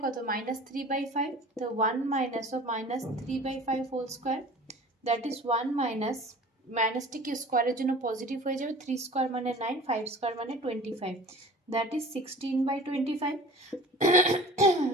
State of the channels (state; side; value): normal; both; correlation 0.43